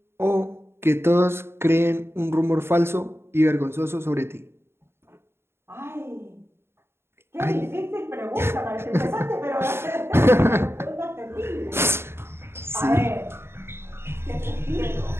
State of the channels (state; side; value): late; left; 0.12 ms